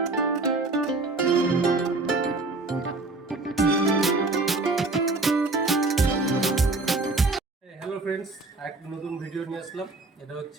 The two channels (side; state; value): left; quieter; 3.3 dB